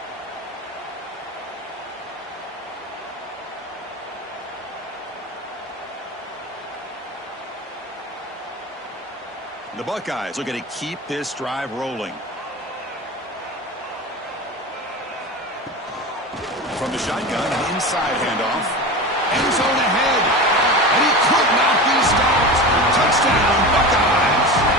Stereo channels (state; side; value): normal; both; correlation 0.28